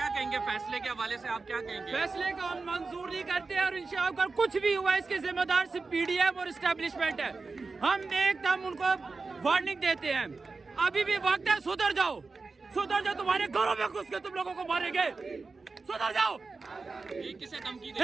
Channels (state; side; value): quieter; left; 4.1 dB